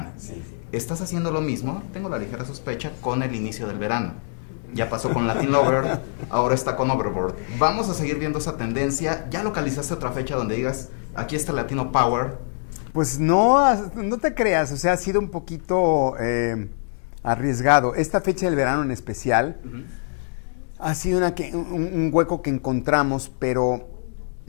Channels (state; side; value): silent; right; digital silence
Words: Sí. Estás haciendo lo mismo, tengo la ligera sospecha, con el inicio del verano. Ya pasó con Latin Lover, ahora está con Overboard. Vamos a seguir viendo esa tendencia. ¿Ya localizaste otra fecha donde digas, aquí está Latino Power? Pues no te creas, o sea, ha sido un poquito arriesgado. Esta fecha del verano en especial ha sido un hueco que encontramos, pero